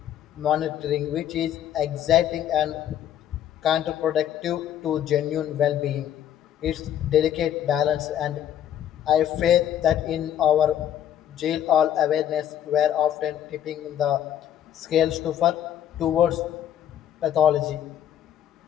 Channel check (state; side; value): quieter; right; 10.6 dB